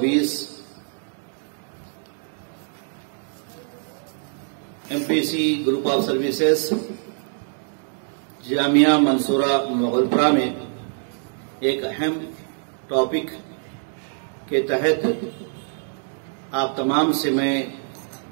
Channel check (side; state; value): left; silent; 62 dB below the other